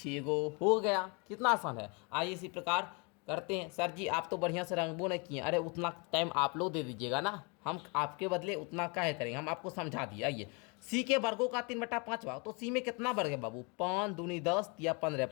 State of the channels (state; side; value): quieter; right; 32.3 dB